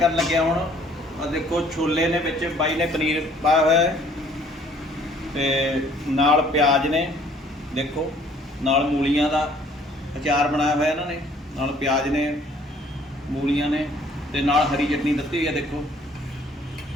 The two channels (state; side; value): normal; both; correlation 0.59